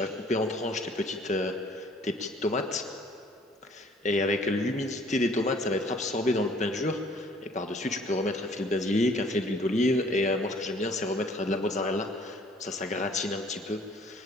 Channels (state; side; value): normal; both; correlation 0.57